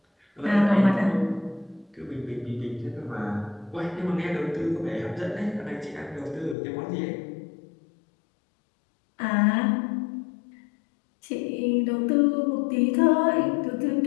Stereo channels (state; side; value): drops out; right; at 6.6 s